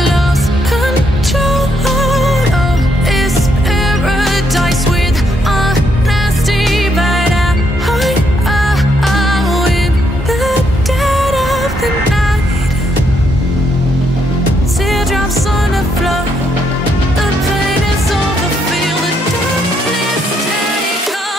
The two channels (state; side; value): normal; both; correlation 0.75